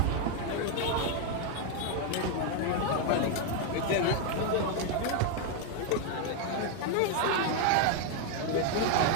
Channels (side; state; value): both; different; correlation 0.01